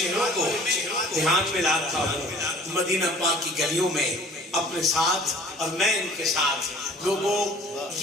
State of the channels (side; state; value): both; normal; correlation 0.50